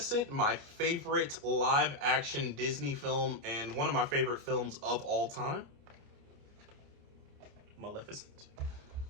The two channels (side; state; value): left; late; 29 ms